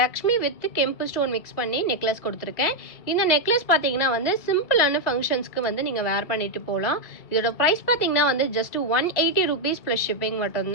வித் கெம்பு ஸ்டோன் மிக்ஸ் பண்ணி நெக்லஸ் கொடுத்துருக்கேன். இந்த நெக்லஸ் பார்த்தீங்கன்னா வந்து சிம்பிளான ஃபங்க்ஷன்ஸ்க்கு வந்து நீங்கள் வேர் பண்ணிட்டு போகலாம். இதோட ப்ரைஸ் பார்த்தீங்கன்னா வந்து ஜஸ்ட் 180 rupees ப்ளஸ் ஷிப்பிங்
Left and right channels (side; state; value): right; late; 2.0 ms